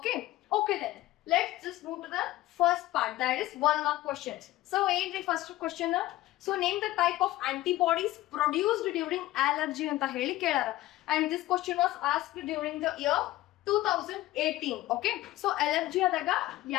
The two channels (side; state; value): right; quieter; 16.3 dB